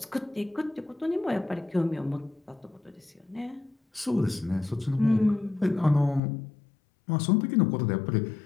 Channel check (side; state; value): right; drops out; at 6.2 s